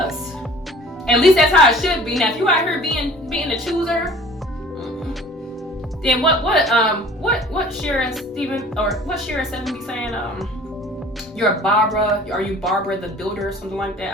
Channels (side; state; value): both; normal; correlation 0.48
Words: At least that's how it should be. Now, if you out here being the chooser, then what Shira Steven, or what Shira 7 be saying? You're a Barbara. Are you Barbara the Builder or something like